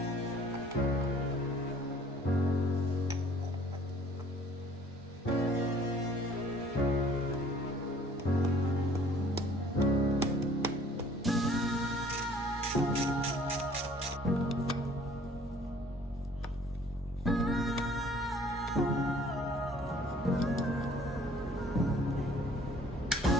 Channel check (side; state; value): both; normal; correlation 0.55